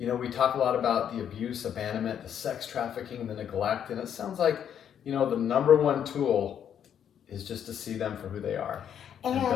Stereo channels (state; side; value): quieter; right; 9.0 dB